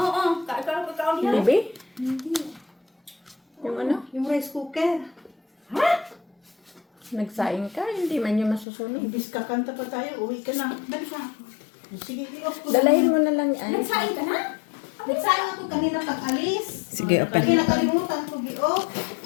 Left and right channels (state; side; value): drops out; right; at 8.7 s